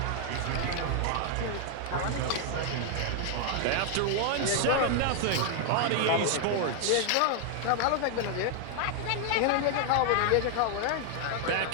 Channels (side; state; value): both; different; correlation 0.00